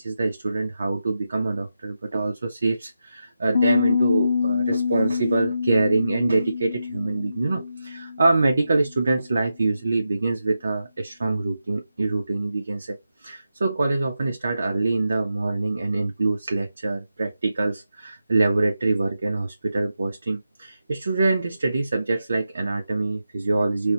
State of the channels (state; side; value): inverted; both; correlation -0.89